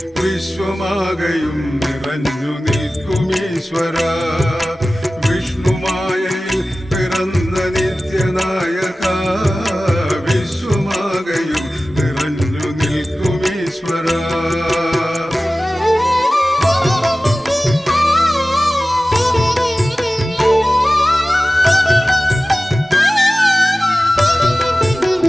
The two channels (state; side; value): normal; both; correlation 0.96